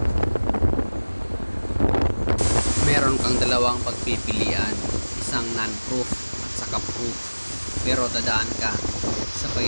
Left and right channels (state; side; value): inverted; both; correlation -1.00